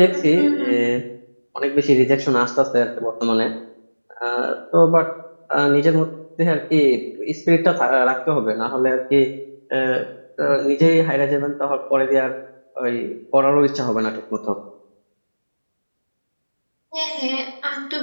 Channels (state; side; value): inverted; both; correlation -1.00